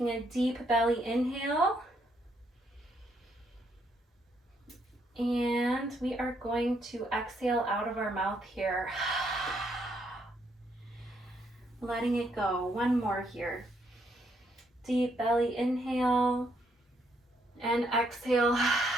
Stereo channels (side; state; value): both; normal; correlation 0.73